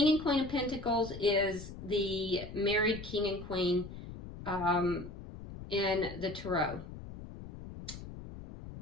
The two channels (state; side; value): noise; left; rumble, 12 dB below the sound